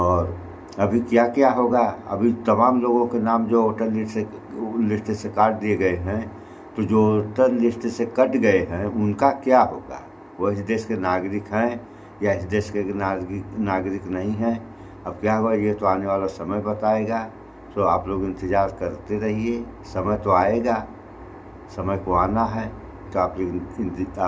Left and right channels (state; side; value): identical; both; correlation 1.00